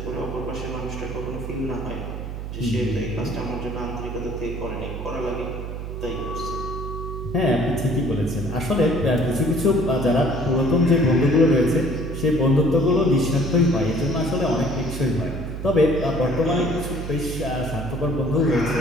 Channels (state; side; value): noise; right; hum, 7 dB below the sound